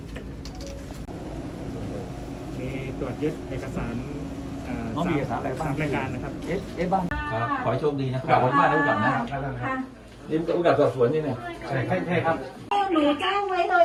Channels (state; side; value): identical; both; correlation 1.00